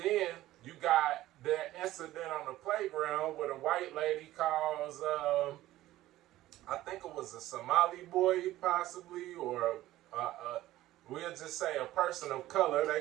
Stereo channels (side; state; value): left; quieter; 15.3 dB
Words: you got that incident on the playground where the white lady calls, I think it was a Somali boy possibly, or we'll just say a person of color. They